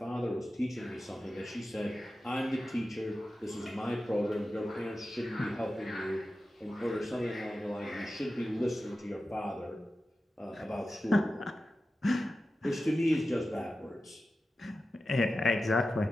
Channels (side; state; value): both; normal; correlation 0.93